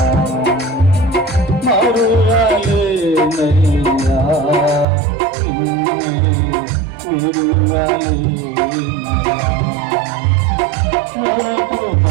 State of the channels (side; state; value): left; drops out; at 4.9 s